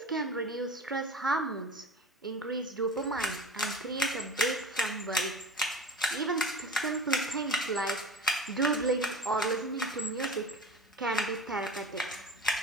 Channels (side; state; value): both; normal; correlation 0.35